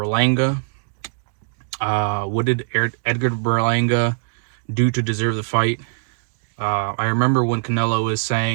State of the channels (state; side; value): silent; left; 65 dB below the other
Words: What did Edgar Berlanga do to deserve the fight? I remember when Canelo was